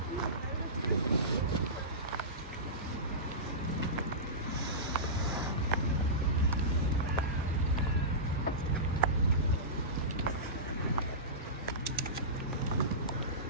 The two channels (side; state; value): both; normal; correlation -0.20